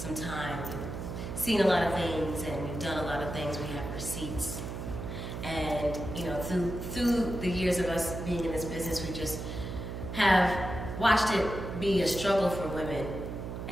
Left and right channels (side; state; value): right; noise; hum, 6 dB below the sound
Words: time. We've seen a lot of things and we've done a lot of things. We have receipts. And, through the years of us being in this business, we just have watched it be a struggle for women.